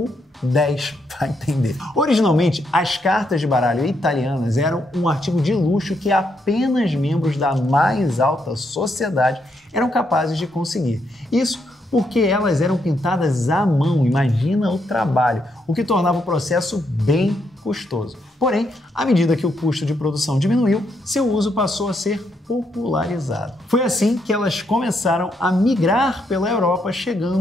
10, para entender. Originalmente, as cartas de baralho italianas eram um artigo de luxo que apenas membros da mais alta sociedade eram capazes de conseguir. Isso porque elas eram pintadas à mão, imagina o trabalho, o que tornava o processo bem custoso. Porém, à medida que o custo de produção diminuiu, seu uso passou a ser popularizado. Foi assim que elas começaram a migrar pela Europa,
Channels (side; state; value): both; normal; correlation 0.77